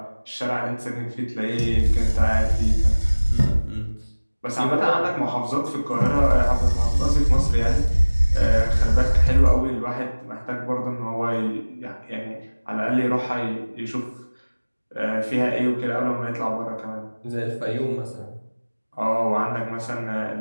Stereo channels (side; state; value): both; inverted; correlation -1.00